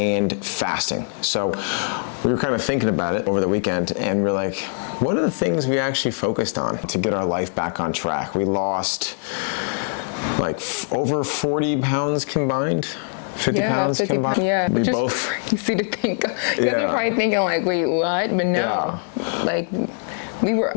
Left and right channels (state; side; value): silent; right; digital silence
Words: fasting. So we were kind of thinking about it over the weekend, and we're like, what are the things we actually focused on to get our life back on track? We lost like over 40 pounds combined. 50 pounds combined. Yeah, we which is both crazy to think. You're probably thinking like, wait, what? But no, like we